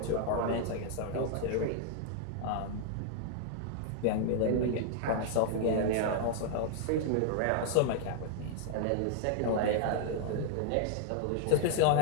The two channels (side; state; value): both; different; correlation 0.00